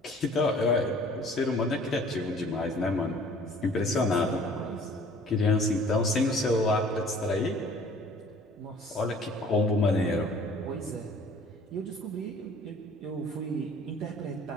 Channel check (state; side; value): normal; both; correlation 0.51